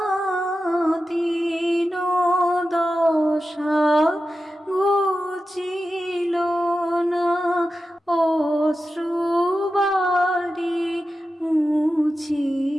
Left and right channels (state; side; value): normal; both; correlation 0.92